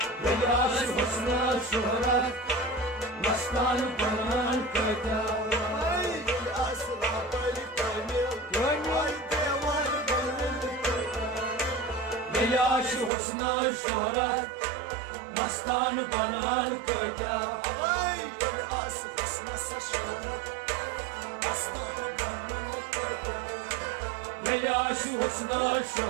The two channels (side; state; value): left; drops out; at 13.1 s